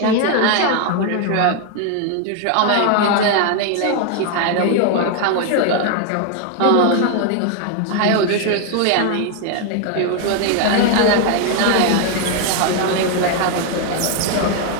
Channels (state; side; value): different; both; correlation 0.01